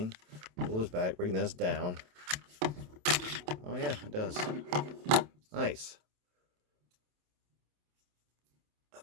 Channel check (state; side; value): late; left; 27 ms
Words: Pull this back. Bring this down. Oh yeah, it does. Nice. I